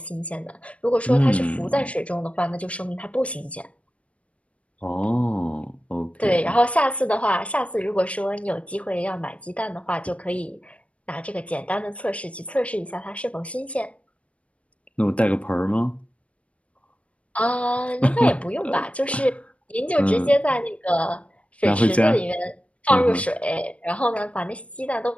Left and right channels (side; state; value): right; late; 0.063 ms